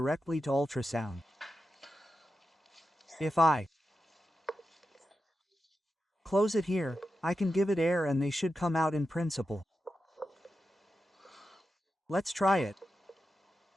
to ultrasound. If I close it here, I can give it air and they should come out in principle. Let's try it.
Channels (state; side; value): normal; both; correlation 0.90